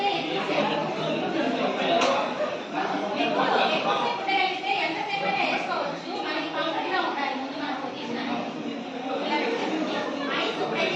ఎక్కువసేపు ఎంతసేపు అయినా వేసుకోవచ్చు. మనకి కంఫర్ట్ గా ఉండాలి. ముందు మనం పొజిషన్ ఐస్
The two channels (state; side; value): identical; both; correlation 1.00